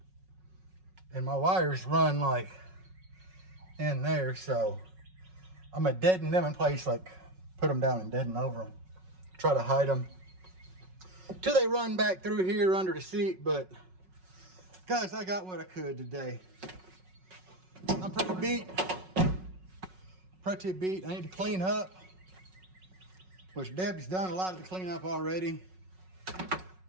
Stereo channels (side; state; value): left; late; 5.4 ms